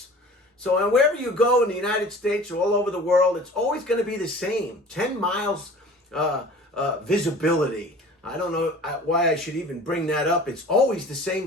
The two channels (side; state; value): both; normal; correlation 0.43